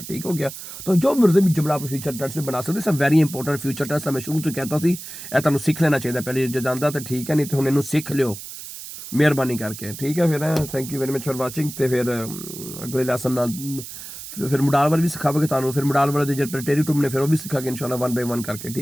ठीक हो गया। तो जो मर्जी भी जुमला आप फ्यूचर टेंस में बना सकते सब वेरी इंपॉर्टेंट फ्यूचर टेंस मैं शुरू तो कहता सी ਇਹ ਤੁਹਾਨੂੰ ਸਿੱਖ ਲੈਣਾ ਚਾਹੀਦਾ ਪਹਿਲੇ ਜੇ ਜਾਂਦਾ ਤਾਂ ਠੀਕ ਹੈ, ਨਹੀਂ ਤੇ ਹੁਣ ਇਹਨੂੰ ਸਿੱਖ ਲਿਓ ਮਿਹਰਬਾਨੀ ਕਰਕੇ, ਠੀਕ ਹੈ। ਫਿਰ thank you very much for watching. ਤੇ ਫਿਰ ਅਗਲੇ ਲੈਸਨ ਨਾਲ ਫਿਰ ਮੋਡਲ ਵਰ ਵੀ ਸਿਖਾਵਾਂਗੇ ਤੁਹਾਨੂੰ, ਫਿਰ ਮੋਡਲ ਵਰ ਦੇ ਜਿਹੜੇ ਪ੍ਰੈਟੇਰਿਟਮ ਨੇ ਫਿਰ ਉਹ ਵੀ ਸਿਖਾਂਗੇ ਇਨਸ਼ਾਅੱਲਾ 1 by 1 ਕਰਕੇ,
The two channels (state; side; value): noise; right; hiss, 11 dB below the sound